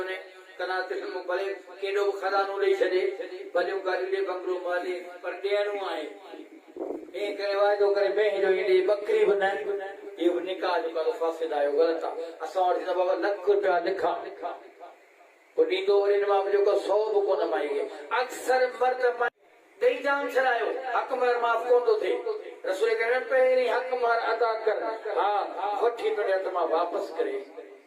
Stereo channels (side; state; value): both; identical; correlation 1.00